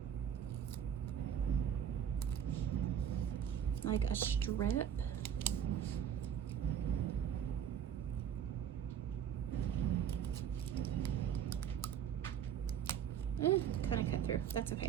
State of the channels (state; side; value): quieter; left; 9.0 dB